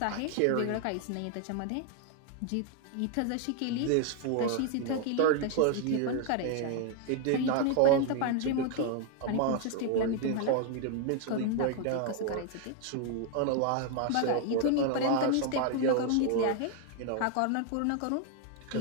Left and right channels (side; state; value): both; different; correlation 0.00